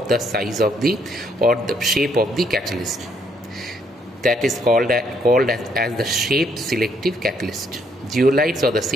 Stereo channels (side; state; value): both; normal; correlation 0.70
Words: size of the shape of the catalyst. That is called as the shape selective catalyst. Zeolites or the